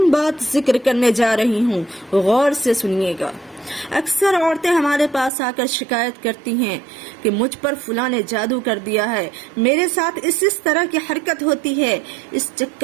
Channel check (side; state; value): left; drops out; at 5.3 s